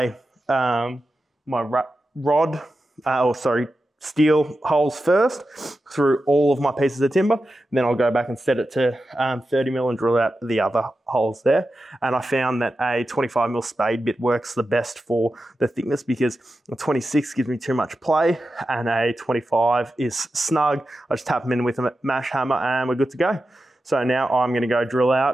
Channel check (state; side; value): normal; both; correlation 0.91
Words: steel holes first through all of my pieces of timber. Then I'll go back and set it to 30mm and drill out the other holes there. And I found that a 25mm spade bit works the best for the thickness because a 26 gives me too much play and a 25 is snug. I just tap them in with a mash hammer and we're good to go. So now I'm going to go drill